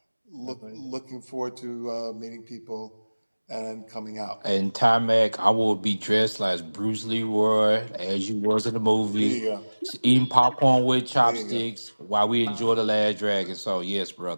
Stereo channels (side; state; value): both; inverted; correlation -1.00